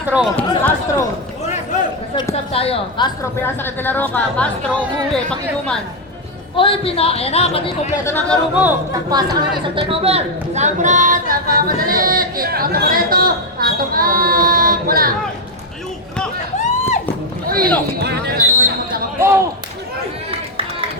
Sub tayo. Castro, pinasa kay De La Roca. Castro, umuwi, pag-inuman. Oy, ayan na, pati kompleto ng laro mo. Nagpasa ka na isang turnover. Sambrat, madali. Kick out na Moreno. Atong wala. Uy!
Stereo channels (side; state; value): both; normal; correlation 0.03